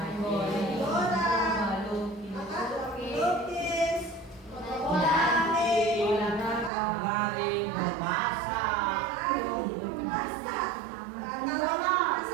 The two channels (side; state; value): left; drops out; at 6.7 s